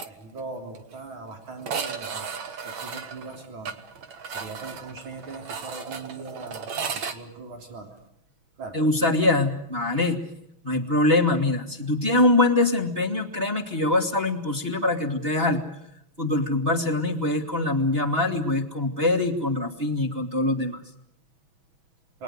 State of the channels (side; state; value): left; late; 6.1 ms